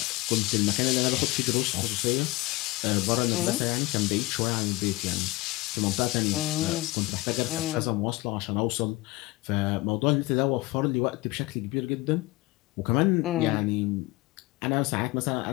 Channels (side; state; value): right; quieter; 21.1 dB